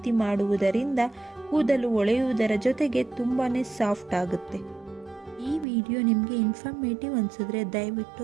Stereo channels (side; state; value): left; drops out; at 5.7 s